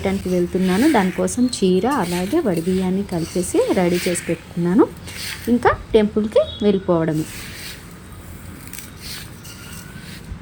వెళ్తున్నాను. దానికోసం చీర అలాగే వడిబియ్యాన్ని కలిపేసి రెడీ చేసి పెట్టుకున్నాను. ఇంకా టెంపుల్కి వెళ్ళిపోవడమే.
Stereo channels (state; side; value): identical; both; correlation 1.00